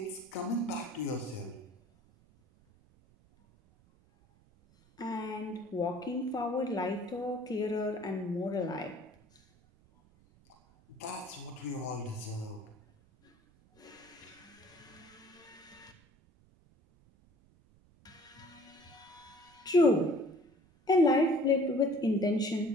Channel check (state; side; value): noise; right; rumble, 30 dB below the sound